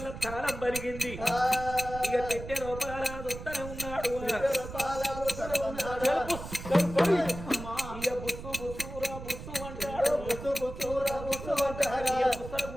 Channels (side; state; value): right; noise; rumble, 10 dB below the sound